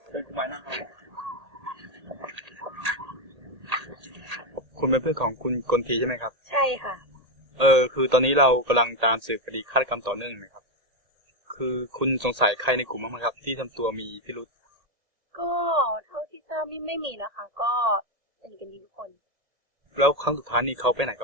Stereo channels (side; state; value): left; late; 1.8 ms